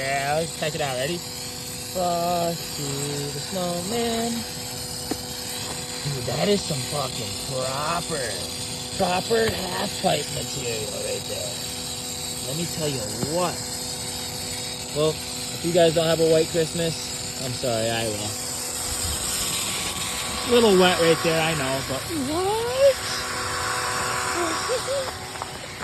Check it out. Ready? Frosty the Snowman. Dude, that is some fucking proper half-pipe material right there. Let me tell you what. Well, if you guys don't have a white Christmas, I'm sorry, I will. A little wet right there, I know, but what?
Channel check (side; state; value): both; identical; correlation 1.00